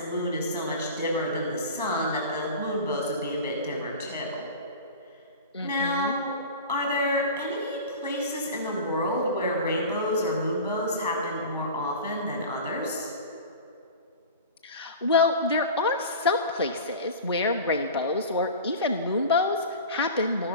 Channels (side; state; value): both; inverted; correlation -0.34